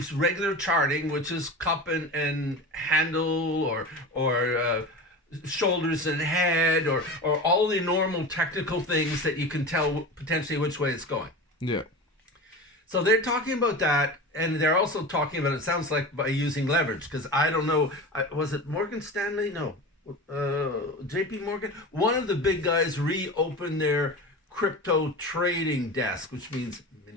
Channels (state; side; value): normal; both; correlation 0.30